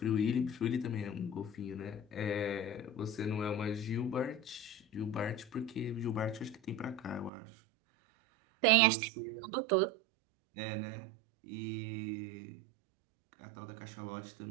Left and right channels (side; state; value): left; drops out; at 7.3 s